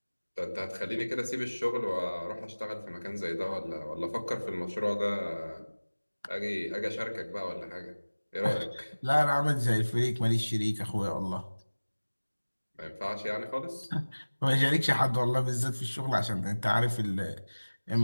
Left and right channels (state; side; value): inverted; both; correlation -1.00